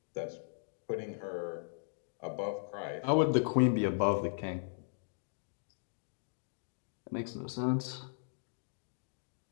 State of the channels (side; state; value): right; silent; digital silence